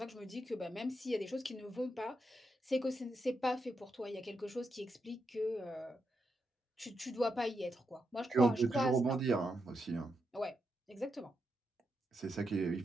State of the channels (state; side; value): normal; both; correlation 0.84